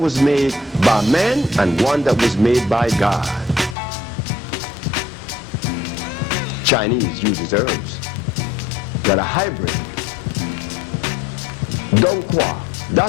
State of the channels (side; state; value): right; drops out; at 3.8 s